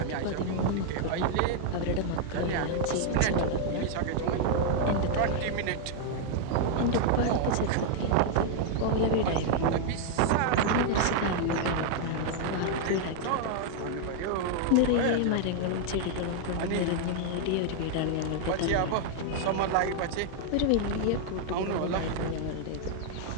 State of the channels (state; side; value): different; both; correlation 0.00